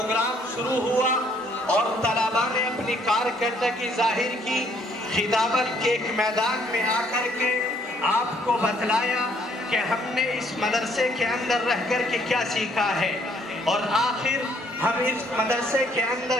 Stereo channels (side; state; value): both; normal; correlation 0.65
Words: شروع ہوا اور طلباء نے اپنی کارکردگی ظاہر کی، خطابت کے ایک میدان میں آ کر کے آپ کو بتلایا کہ ہم نے اس مدرسے کے اندر رہ کر کے کیا سیکھا ہے، اور آخر ہم اس مدرسے کے اندر